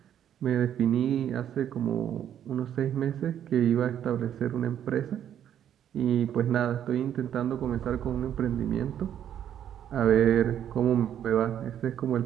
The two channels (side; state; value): left; quieter; 10.1 dB